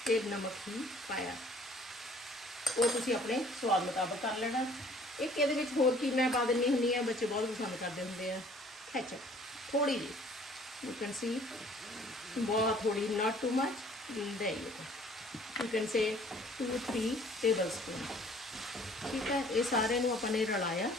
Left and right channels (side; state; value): both; normal; correlation 0.55